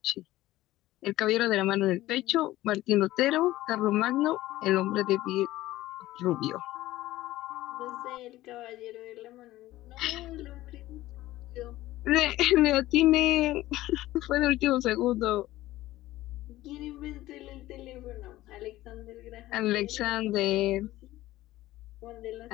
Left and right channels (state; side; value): quieter; right; 16.3 dB